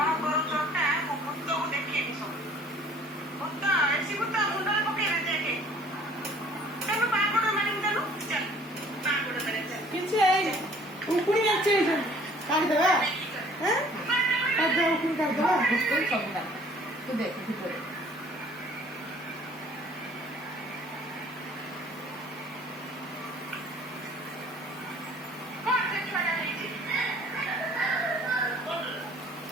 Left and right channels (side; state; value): both; normal; correlation 0.54